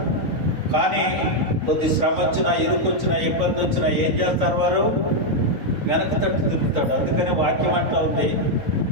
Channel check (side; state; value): left; late; 3.9 ms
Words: కానీ కొద్ది శ్రమ వచ్చినా, ఇరుకొచ్చినా, ఇబ్బంది వచ్చినా ఏం చేస్తారు? వారు వెనక తట్టు తిరుగుతాడు. అందుకని వాక్యం అంటా ఉంది,